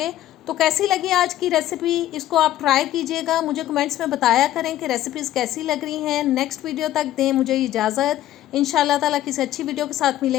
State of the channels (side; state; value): right; quieter; 13.3 dB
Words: तो कैसी लगी आज की रेसिपी, इसको आप ट्राई कीजिएगा, मुझे कमेंट्स में बताया करें कि रेसिपीज़ कैसी लग रही हैं। नेक्स्ट वीडियो तक दें मुझे इजाज़त। इंशाल्लाह ताला किसी अच्छी वीडियो के साथ